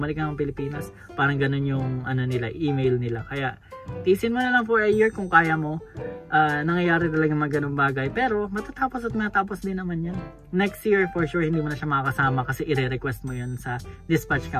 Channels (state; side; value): identical; both; correlation 1.00